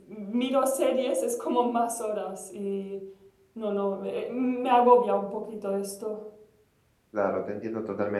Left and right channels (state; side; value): identical; both; correlation 1.00